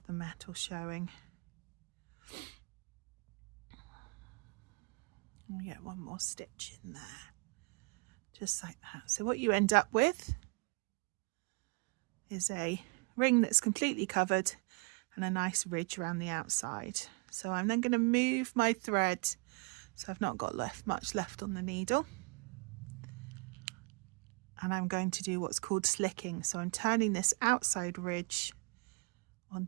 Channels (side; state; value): left; quieter; 31.5 dB